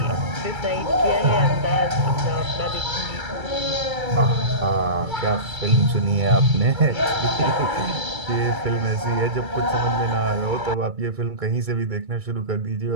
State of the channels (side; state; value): left; late; 2.3 ms